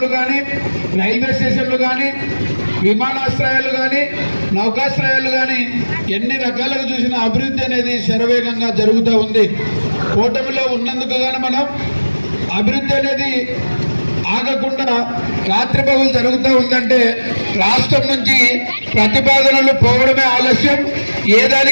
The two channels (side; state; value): both; inverted; correlation -1.00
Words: కానీ రైల్వే స్టేషన్లు కానీ విమానాశ్రయాలు కానీ నౌకాశ్రయాలు కానీ ఎన్ని రకాలుగా చూసిన అభివృద్ధి అనేది శరవేగంగా జరుగుతూ ఉంది. కూటమిలో ఉన్నందుకు గాను మనం అభివృద్ధి అనేది ఆగకుండా రాత్రిపగలు జరుగుతూ ఉందంటే రాష్ట్రం నుంచి ప్రతిపాదనలు పోవడమే ఆలస్యం. ఏ